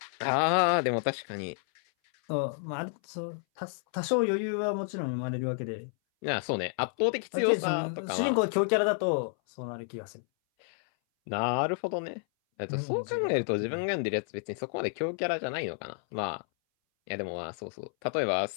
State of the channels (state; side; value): silent; right; 57 dB below the other